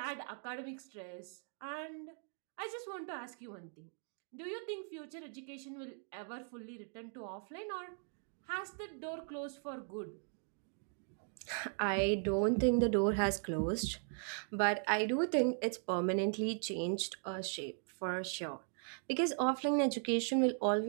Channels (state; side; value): silent; left; 52 dB below the other